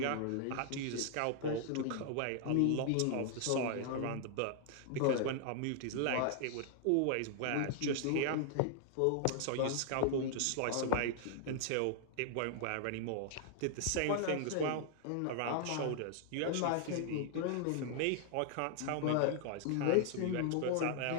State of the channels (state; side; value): different; both; correlation 0.00